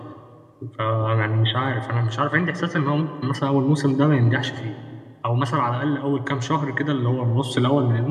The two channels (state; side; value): identical; both; correlation 1.00